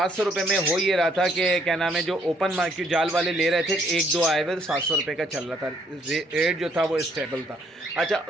रुपये में हो ये रहा था कि क्या नाम है जो ओपन मार्केट जाल वाले ले रहे थे, एक दो आए हुए 700 रुपये का चल रहा था, रेट जो था वो स्टेबल था। अच्छा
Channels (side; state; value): both; normal; correlation 0.67